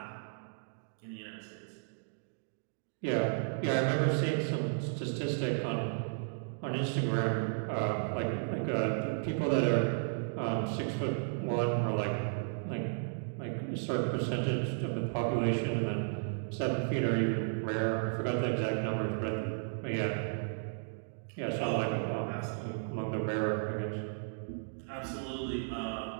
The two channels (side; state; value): left; silent; digital silence